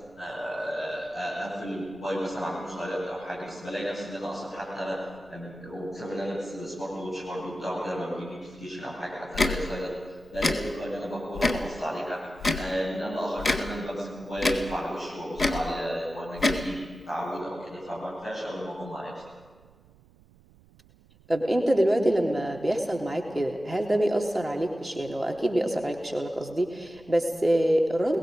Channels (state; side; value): noise; right; rumble, 27 dB below the sound